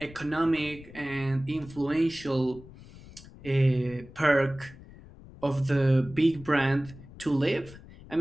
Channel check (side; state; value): left; noise; rumble, 19 dB below the sound